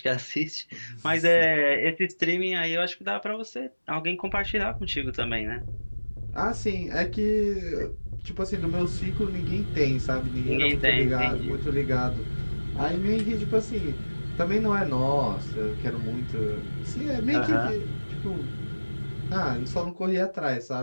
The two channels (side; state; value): both; inverted; correlation -1.00